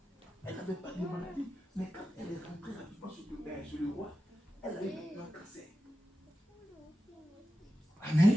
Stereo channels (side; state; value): both; normal; correlation 0.92